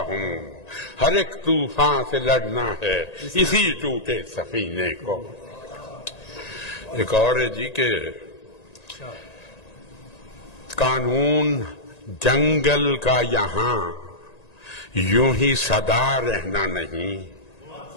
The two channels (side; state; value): right; late; 1.9 ms